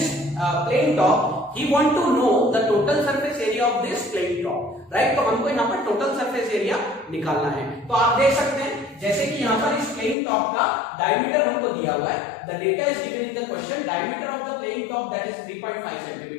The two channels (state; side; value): drops out; right; at 10.2 s